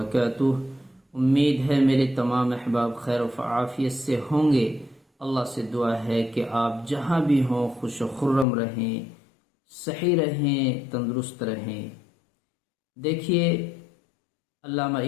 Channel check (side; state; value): right; drops out; at 8.5 s